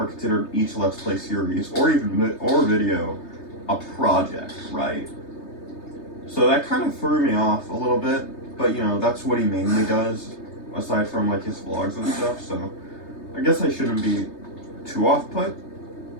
considered each Let's Play series or video a project, right? So that kind of threw me off a little bit, but you know, that's what he mainly does, aside from like his vlogs and stuff, so I guess I shouldn't be too off-put,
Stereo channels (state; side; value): late; right; 3.3 ms